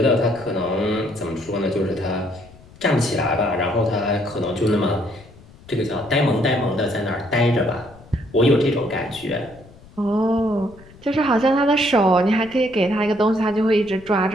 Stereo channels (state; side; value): noise; left; rumble, 23 dB below the sound